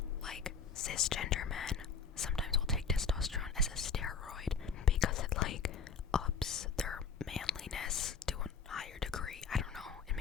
Like cisgender men sometimes will take testosterone as a steroid because it like ups their manliness to a higher degree. I don't know. It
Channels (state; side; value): quieter; right; 5.7 dB